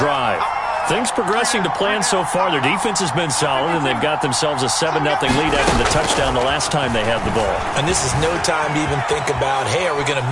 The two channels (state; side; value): identical; both; correlation 1.00